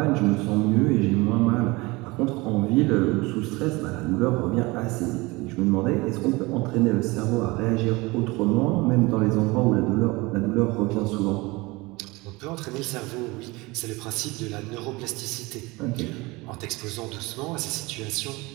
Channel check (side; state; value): left; quieter; 23.3 dB